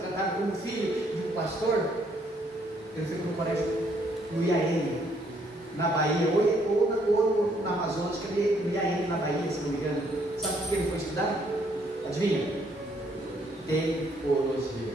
como filho de um pastor, ele foi para o colégio no IAN, na Bahia, ou na Amazonas, que ele no IAN na Bahia, se não me engano. Sabe por que ele foi estudar? Adivinha? Teologia.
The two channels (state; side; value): normal; both; correlation 0.68